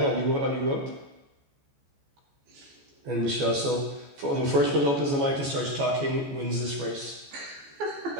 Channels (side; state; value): left; late; 14 ms